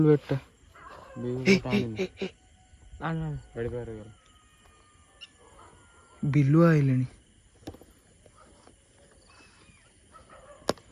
बैट बिलुआ आइलेनी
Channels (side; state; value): both; identical; correlation 1.00